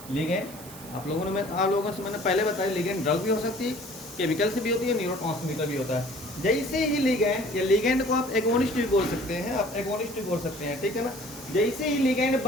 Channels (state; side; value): noise; right; hiss, 16 dB below the sound